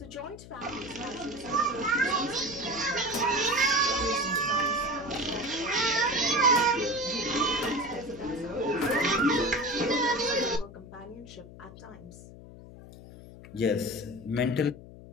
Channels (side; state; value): left; noise; hum, 17 dB below the sound